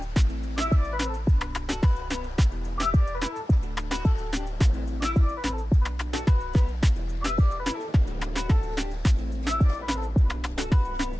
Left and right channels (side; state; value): both; normal; correlation 0.96